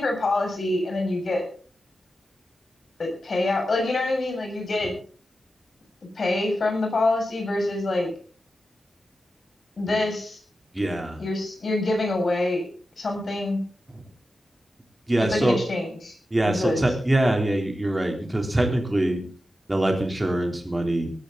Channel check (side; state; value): both; normal; correlation 0.91